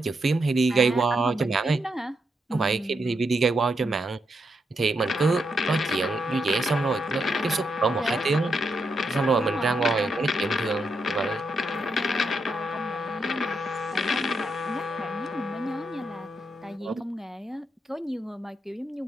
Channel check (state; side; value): normal; both; correlation 0.82